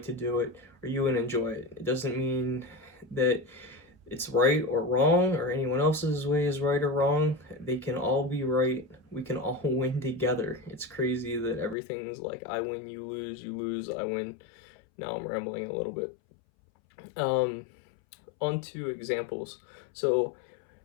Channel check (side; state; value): right; drops out; at 11.8 s